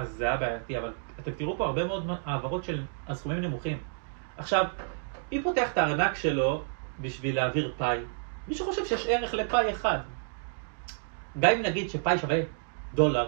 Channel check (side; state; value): left; silent; digital silence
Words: זה היה בעייתי, אבל אתם תראו פה הרבה מאוד העברות של הסכומים נמוכים. עכשיו, מי פותח את הארנק שלו בשביל להעביר פאי? מישהו חושב שיש ערך לפאי אחד. גם אם נגיד שפאי שווה $1,